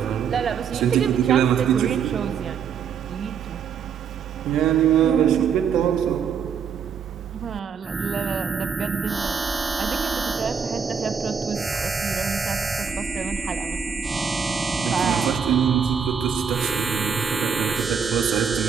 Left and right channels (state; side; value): quieter; left; 6.9 dB